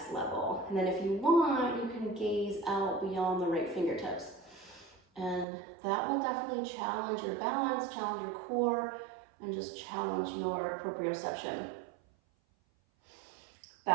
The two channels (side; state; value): left; drops out; at 5.5 s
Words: level. And then if you want, you can gaze out beyond the right fingertips. And that will definitely challenge your balance, challenge your core, and just challenge your proprioception.